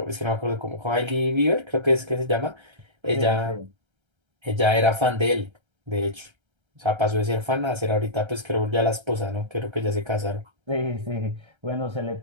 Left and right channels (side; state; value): left; late; 1.3 ms